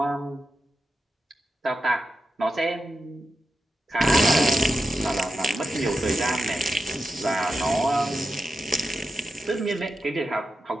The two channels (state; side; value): normal; both; correlation 0.90